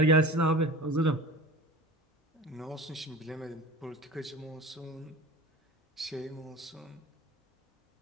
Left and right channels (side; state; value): both; normal; correlation 0.37